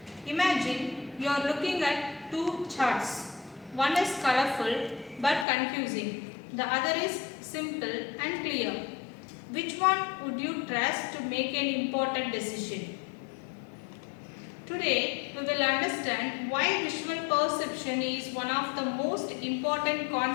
Imagine you are looking at two charts. One is colorful but confusing. The other is simple and clear. Which one would you trust to make an important decision? Today, we will understand why visual perception is one of the most important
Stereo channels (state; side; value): drops out; right; at 5.5 s